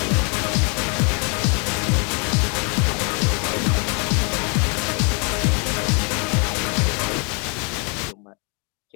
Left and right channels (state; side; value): quieter; right; 35.1 dB